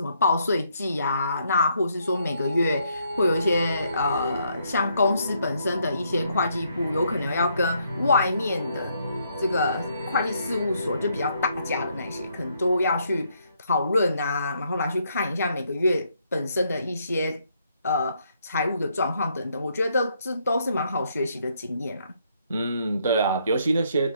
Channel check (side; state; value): both; inverted; correlation -0.73